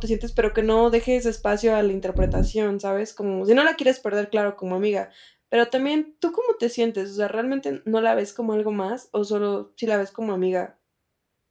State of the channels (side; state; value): both; identical; correlation 1.00